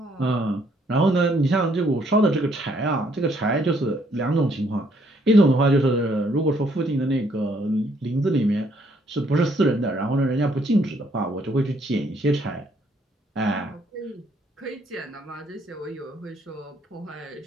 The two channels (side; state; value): both; normal; correlation 0.68